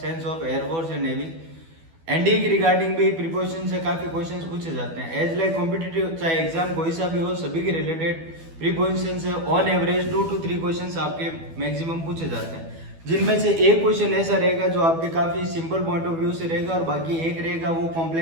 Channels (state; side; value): late; left; 12 ms